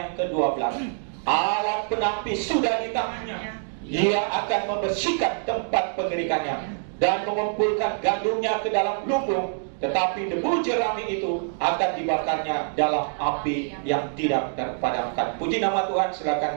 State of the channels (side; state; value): left; silent; digital silence